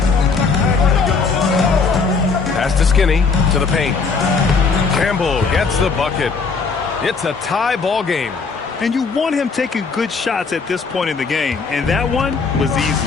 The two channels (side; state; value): right; quieter; 4.8 dB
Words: Pass to Skinny to the paint. Campbell gets the bucket. It's a tie ball game. And you want him taking good shots at this point in the game. And that one was